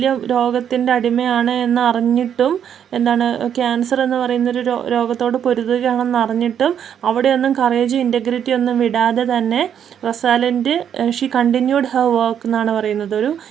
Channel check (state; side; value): quieter; left; 8.9 dB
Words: രോഗത്തിൻ്റെ അടിമയാണ് എന്ന് അറിഞ്ഞിട്ടും, ക്യാൻസർ എന്ന് പറയുന്നൊരു രോഗത്തോട് പൊരുതുകയാണെന്ന് അറിഞ്ഞിട്ടും അവിടെയൊന്നും കറേജും ഇൻറ്റഗ്രിറ്റി ഒന്നും വിടാതെ തന്നെ റൊസാലിൻഡ് ഷീ കണ്ടിന്യൂഡ് ഹെർ വർക്ക് എന്നാണ് പറയുന്നത്. ഒരു